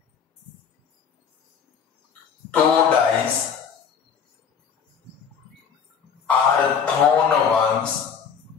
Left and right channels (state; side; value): quieter; right; 7.0 dB